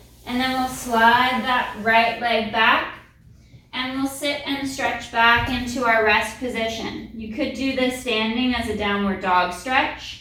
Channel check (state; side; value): identical; both; correlation 1.00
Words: And then we'll slide that right leg back and we'll sit and stretch back into our rest position. You could do this standing as a downward dog